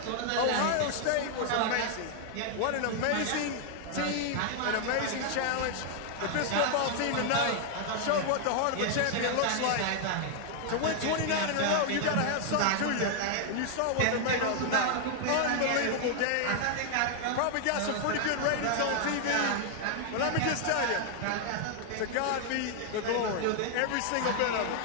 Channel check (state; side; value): different; both; correlation 0.00